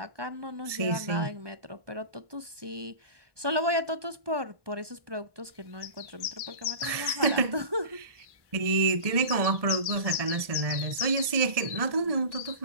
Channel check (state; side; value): late; left; 1.1 ms